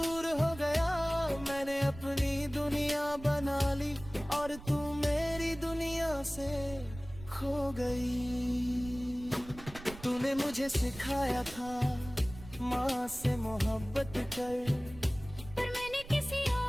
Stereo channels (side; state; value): right; noise; rumble, 16 dB below the sound